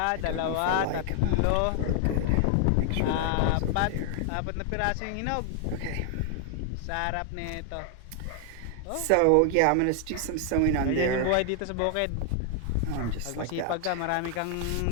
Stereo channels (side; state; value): both; different; correlation 0.00